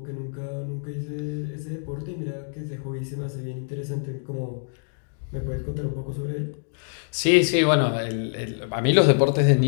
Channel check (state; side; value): silent; right; digital silence